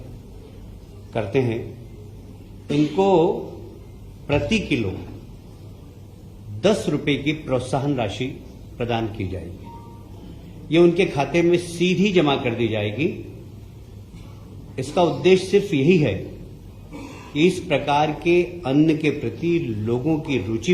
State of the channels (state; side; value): identical; both; correlation 1.00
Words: करते हैं। इनको प्रति किलो 10 रुपए की प्रोत्साहन राशि प्रदान की जाएगी। ये उनके खाते में सीधी जमा कर दी जाएगी। इसका उद्देश्य सिर्फ यही है कि इस प्रकार के अन्न के प्रति लोगों की